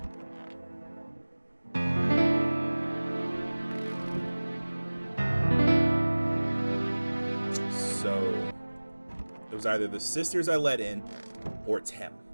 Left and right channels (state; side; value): inverted; both; correlation -1.00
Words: was either the sisters I let in, or it's him.